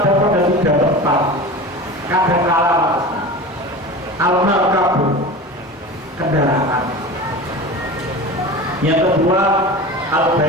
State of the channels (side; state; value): both; normal; correlation 0.32